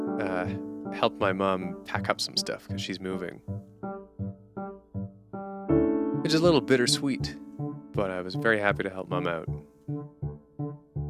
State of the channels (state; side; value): identical; both; correlation 1.00